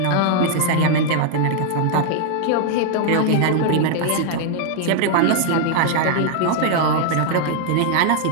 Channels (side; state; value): both; different; correlation 0.00